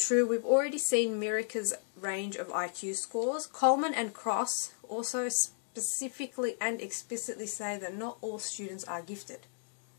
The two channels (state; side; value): silent; right; digital silence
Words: true, we've already seen Mirica's range of IQ scores. Coleman and Cross also specifically and explicitly say that not all students are gifted.